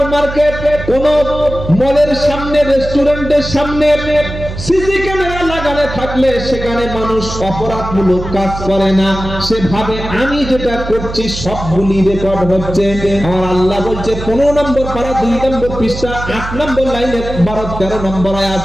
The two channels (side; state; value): right; noise; hum, 9 dB below the sound